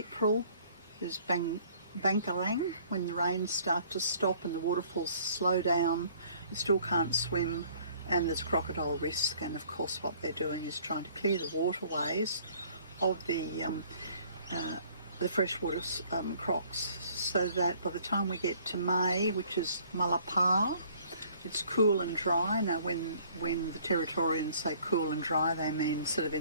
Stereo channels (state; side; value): inverted; both; correlation -0.57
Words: is Bankarang, when the rains start to stop and the waterfalls slow down. You still can't swim, and there's crocodile risk, and of course what they're doing is trying to clear the waterways of the freshwater crocs, so that by the time we get to May, which is Malapar, it's cool and dry. Now when the Territorians say cool and dry, they mean sort of